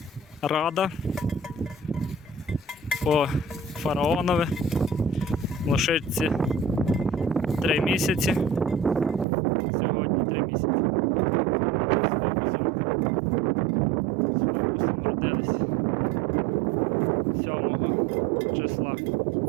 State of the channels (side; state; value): left; drops out; at 9.2 s